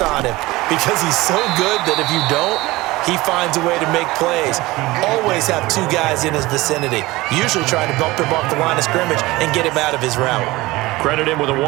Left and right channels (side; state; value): left; quieter; 20.0 dB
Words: him because he's so good that if you don't, he finds a way to make plays. Always have two guys in his vicinity, usually trying to bump him off the line of scrimmage and get him out of his route. Credit him with a